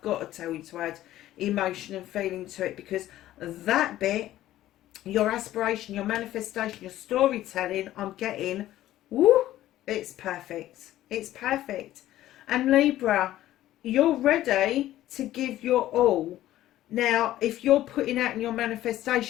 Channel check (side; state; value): right; quieter; 14.1 dB